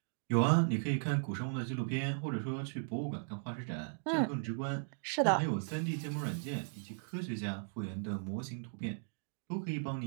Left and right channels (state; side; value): silent; left; digital silence